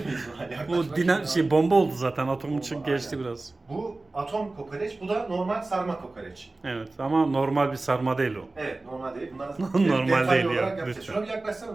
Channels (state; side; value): quieter; left; 3.2 dB